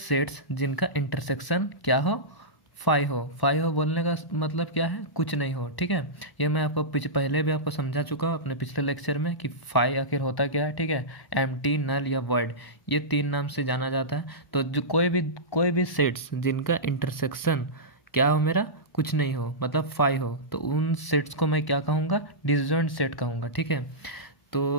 जिनका इंटरसेक्शन क्या हो, फाइव हो बोलने का मतलब क्या है, कुछ नहीं हो। ठीक है, ये मैं आपको पहले भी आपको समझा चुका हूँ अपने पिछले लेक्चर में कि फाइव आखिर होता क्या है। ठीक है, एम्प्टी, नल या वॉइड, ये 3 नाम से जाना जाता है। तो जो कोई भी सेट्स जिनका इंटरसेक्शन क्या हो, मेरा कुछ नहीं हो, मतलब फाइव हो, तो उन सेट्स को मैं क्या कहूँगा, डिसजॉइंट सेट कहूँगा। ठीक है,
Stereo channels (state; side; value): late; right; 1.0 ms